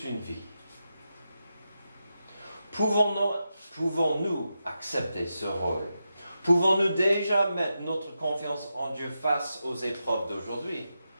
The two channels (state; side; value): inverted; both; correlation -0.88